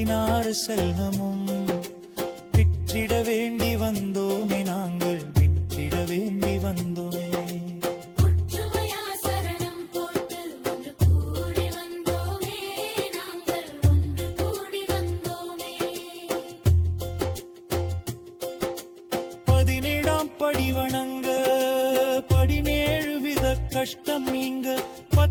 செல்வமும் விற்றிட வேண்டி வந்தோமே நாங்கள் விற்றிட வேண்டி வந்தோமே ஒற்றுமையா சரணம் போட்டு ஒன்று கூடி வந்தோமே நாங்கள் ஒன்று கூடி வந்தோமே 17ஆம் படி வணங்க 17 வித கஷ்டம் நீங்க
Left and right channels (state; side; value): identical; both; correlation 1.00